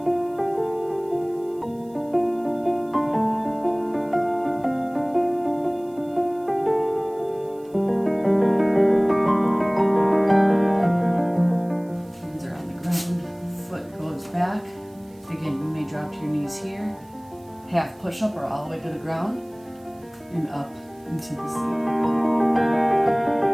Back. Again, you may drop to your knees here. Half push-up or all the way to the ground. And up into the seal.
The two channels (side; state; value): right; noise; hiss, 30 dB below the sound